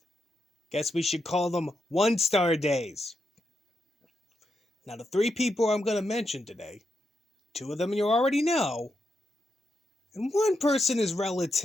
Guess we should call them one-star days. Now, the three people I'm going to mention today, two of them you already know, and one person is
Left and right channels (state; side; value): normal; both; correlation 0.84